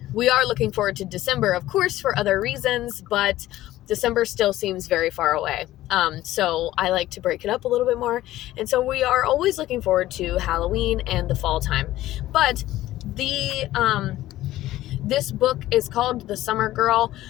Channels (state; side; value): quieter; right; 15.2 dB